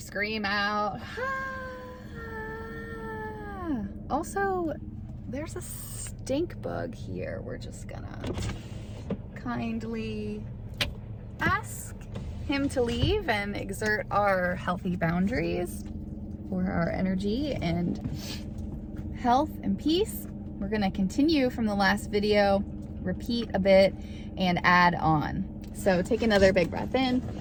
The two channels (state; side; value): identical; both; correlation 1.00